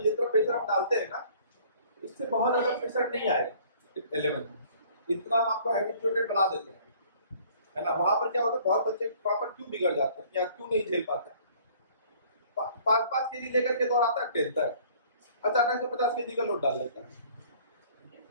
जितना प्रेशर आप डालते हैं ना इससे बहुत ज़्यादा प्रेशर नहीं आएगा 11th में। इतना हम आपको हैबिचुएटेड बना देते हैं, है ना। वहाँ पर क्या होता है, बहुत बच्चे वहाँ पर क्यों बिगड़ जाते हैं या क्यों नहीं झेल पाते हैं। 5-5 केजी लेकर के दौड़ाता है 10th तक, अचानक से 50 केजी का लोड डाल देता है,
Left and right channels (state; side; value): inverted; both; correlation -0.55